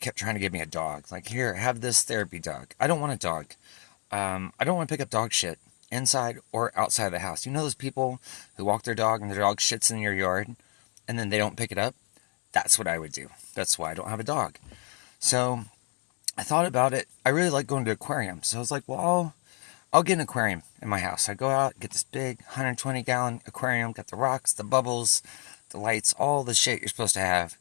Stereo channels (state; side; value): quieter; right; 36.3 dB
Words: trying to give me a dog. Like, here, have this therapy dog. I don't want a dog. I don't want to pick up dog shit inside or outside of the house. You know those people who walk their dog and their dog shits in your yard and then they don't pick it up? That's what I would do. That's why I don't have a dog. So I thought about it. I really like going to aquariums. So I was like, well, I'll get an aquarium in my house. I go out, get this big 120-gallon aquarium, got the rocks, the bubbles, the lights, all the shit you're supposed to have.